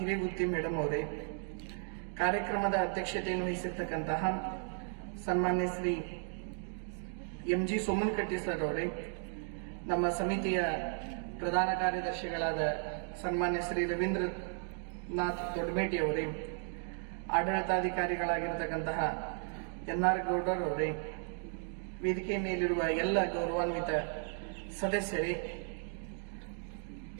ಮೇಡಮ್ ಅವರೇ, ಕಾರ್ಯಕ್ರಮದ ಅಧ್ಯಕ್ಷತೆಯನ್ನು ವಹಿಸಿರ್ತಕ್ಕಂತಹ ಸನ್ಮಾನ್ಯ ಶ್ರೀ MG ಸೋಮನಕಟ್ಟಿ ಸರ್ ಅವರೇ, ನಮ್ಮ ಸಮಿತಿಯ ಪ್ರಧಾನ ಕಾರ್ಯದರ್ಶಿಗಳಾದ ಸನ್ಮಾನ್ಯ ಶ್ರೀ ರವೀಂದ್ರನಾಥ್ ದೊಡ್ಡಮೇಟಿ ಅವರೇ, ಆಡಳಿತಾಧಿಕಾರಿಗಳಾಗಿರತಕ್ಕಂತಹ NR ಗೌಡರ್ ಅವರೇ, ವೇದಿಕೆ ಮೇಲಿರುವ ಎಲ್ಲ ಗೌರವಾನ್ವಿತ ಸದಸ್ಯರೇ,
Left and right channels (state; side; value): silent; left; 54 dB below the other